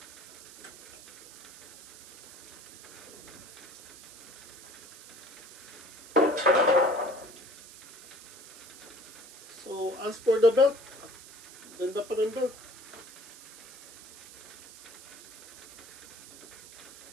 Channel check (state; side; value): noise; right; hiss, 18 dB below the sound